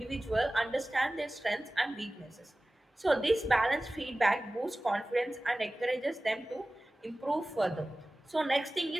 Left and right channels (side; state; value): both; normal; correlation 0.97